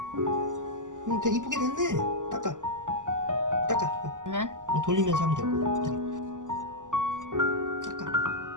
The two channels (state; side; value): late; left; 0.87 ms